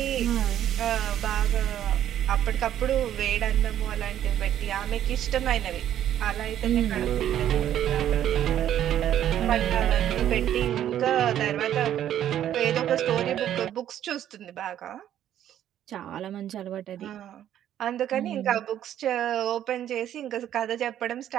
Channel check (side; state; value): left; quieter; 11.1 dB